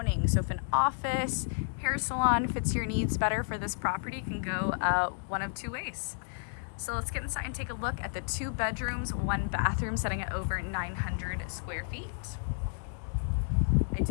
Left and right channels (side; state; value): right; silent; digital silence